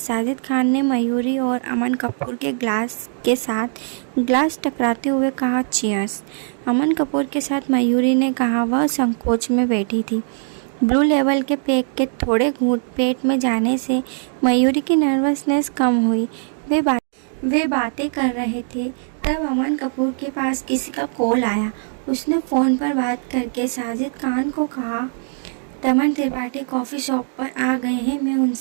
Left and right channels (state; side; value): silent; left; 63 dB below the other